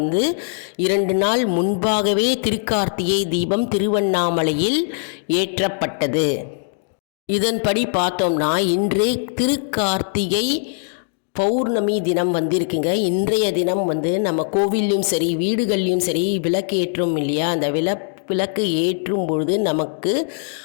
2 நாள் முன்பாகவே திருக்கார்த்திகை தீபம் திருவண்ணாமலையில் ஏற்றப்பட்டது. இதன்படி பார்த்தோம்னா இன்று திருக்கார்த்திகை பௌர்ணமி தினம் வந்திருக்குங்க. இன்றைய தினம் நம்ம கோவில்லையும் சரி, வீடுகள்லையும் சரி விளக்கு ஏற்றும் இல்லையா, அந்த விளக்கு ஏற்றும் பொழுது நமக்கு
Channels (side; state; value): right; silent; digital silence